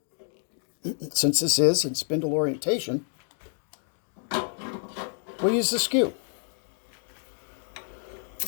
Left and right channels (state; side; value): silent; right; 59 dB below the other